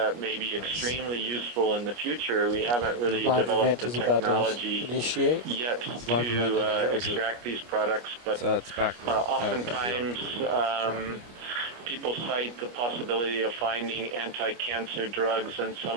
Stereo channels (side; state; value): left; late; 25 ms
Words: may be extremely useful in the future. We haven't really developed the technology yet to extract these products, but oftentimes people cite the possibility of finding anti-cancer drugs in